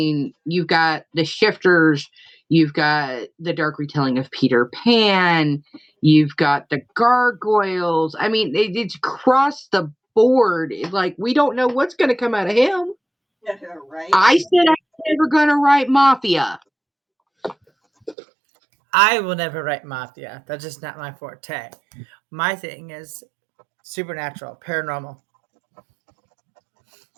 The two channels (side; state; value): left; drops out; at 18.2 s